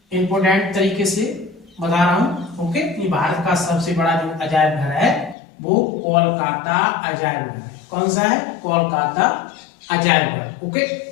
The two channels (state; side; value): drops out; right; at 5.4 s